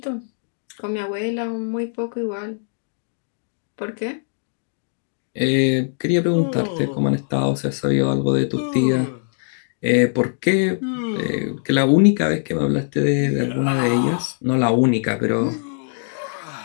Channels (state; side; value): silent; right; 63 dB below the other